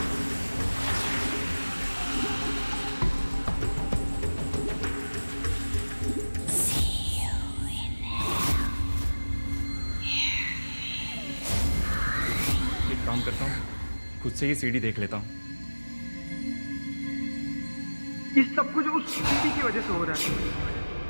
काम करता हूँ, खुद से ही सीडी देख लेता हूँ। इस सब कुछ उस सीडी की वजह से हो रहा है।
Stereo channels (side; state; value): both; inverted; correlation -1.00